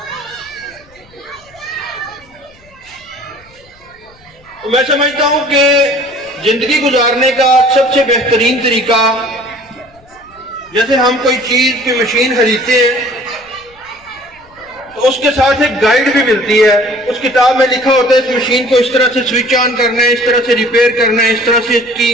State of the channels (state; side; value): noise; left; rumble, 29 dB below the sound